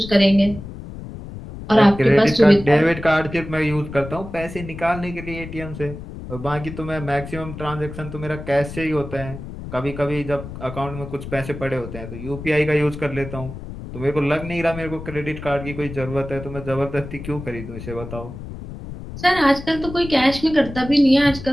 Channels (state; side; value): noise; left; rumble, 11 dB below the sound